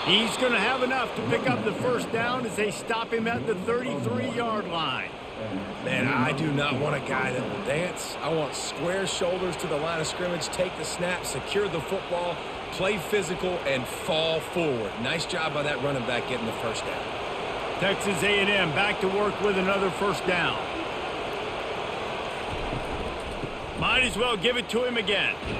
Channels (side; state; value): both; identical; correlation 1.00